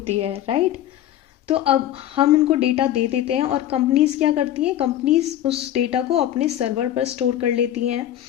है, राइट। तो अब हम उनको डेटा दे देते हैं और कंपनीज क्या करती हैं, कंपनीज उस डेटा को अपने सर्वर पर स्टोर कर लेती हैं।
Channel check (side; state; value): right; quieter; 12.2 dB